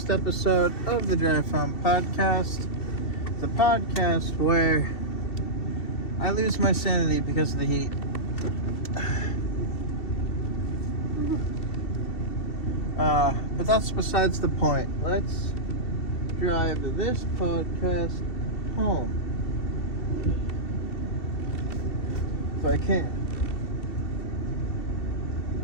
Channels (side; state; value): right; late; 2.7 ms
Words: episode of the Drive Home Podcast, the podcast where I lose my sanity because of the heat. But that's besides the point. Let's drive this podcast home. If I can.